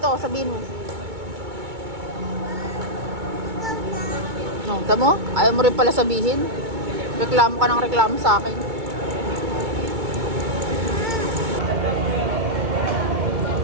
sabihin mo. No, tamo? Ayaw mo rin pala sabihin. Reklamo ka ng reklamo sa akin.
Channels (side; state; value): left; late; 2.2 ms